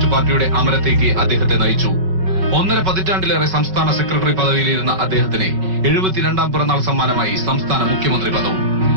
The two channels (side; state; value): left; late; 5.3 ms